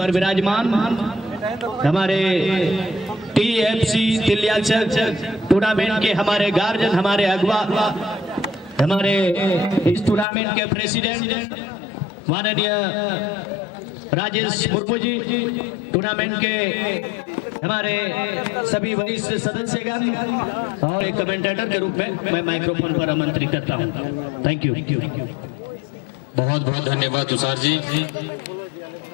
विराजमान हमारे टीएफसी तिलियाचक टूर्नामेंट के हमारे गार्जियन, हमारे अगवा, हमारे इस टूर्नामेंट के प्रेसिडेंट माननीय राजेश मुर्मू जी, टूर्नामेंट के हमारे सभी वरिष्ठ सदस्यगण और एक कमेंटेटर के रूप में मैं माइक्रोफोन पर आमंत्रित करता हूं। Thank you. बहुत बहुत धन्यवाद तुषार जी।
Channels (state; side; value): drops out; right; at 10.2 s